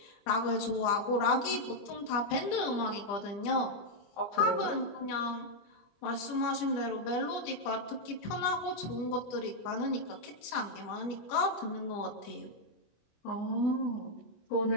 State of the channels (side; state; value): right; late; 25 ms